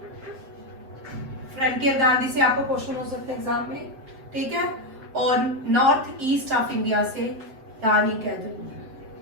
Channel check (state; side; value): late; left; 7.6 ms